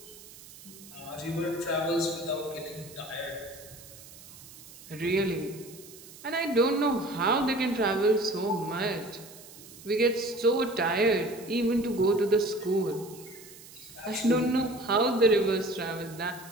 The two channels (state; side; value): noise; right; hiss, 19 dB below the sound